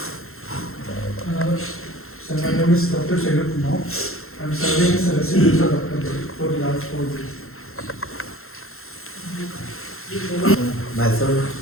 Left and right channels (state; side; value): late; right; 0.62 ms